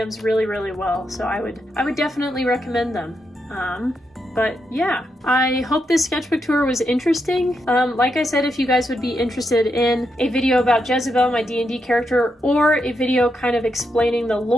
really well, so I would definitely recommend them. But yeah, I hope this sketchbook tour was interesting. Like I said, if you guys would be interested in a video about Jezebel, my D&D character, or a video kind of explaining the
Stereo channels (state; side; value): normal; both; correlation 0.83